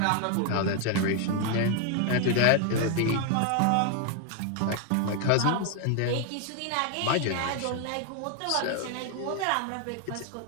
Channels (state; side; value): different; both; correlation 0.01